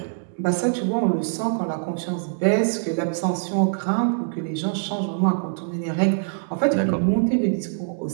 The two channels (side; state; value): left; silent; digital silence